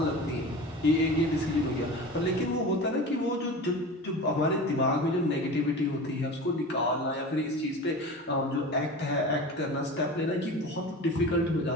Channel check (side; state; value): both; normal; correlation 0.33